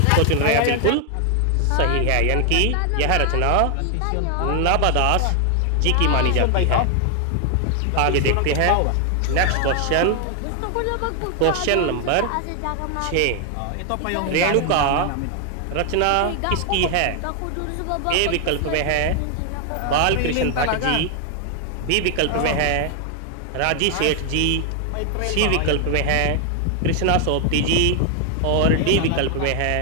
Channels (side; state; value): both; different; correlation 0.00